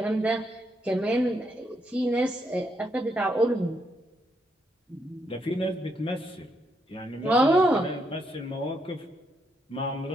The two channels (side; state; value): both; normal; correlation 0.78